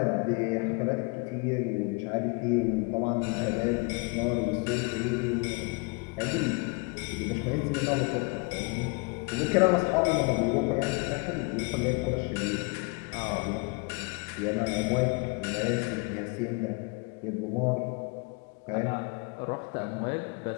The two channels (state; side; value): quieter; right; 30.0 dB